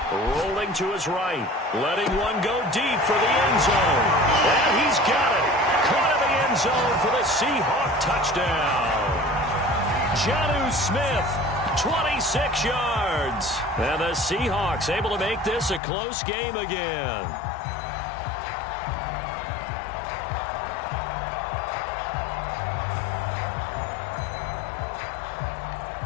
rolling to his right, letting one go deep for the end zone. And he's got it. Caught in the end zone for the Seahawk touchdown. Jonnu Smith, 26 yards. And the Seahawks able to make this a close game again.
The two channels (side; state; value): right; drops out; at 15.8 s